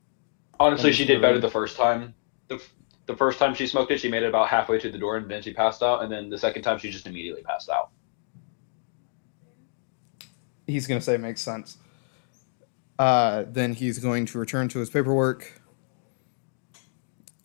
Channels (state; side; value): silent; right; digital silence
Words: Honestly, she did better the first time. the first time she smoked it, she made it about halfway to the door, and then she passed out. And then the second time, she just immediately passed out. He's going to say makes sense. Then he's going to return to his paperwork.